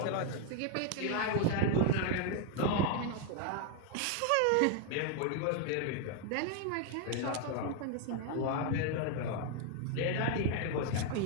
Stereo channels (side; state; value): both; different; correlation 0.01